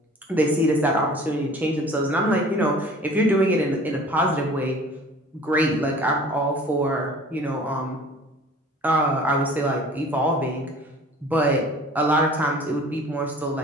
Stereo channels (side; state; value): both; normal; correlation 0.47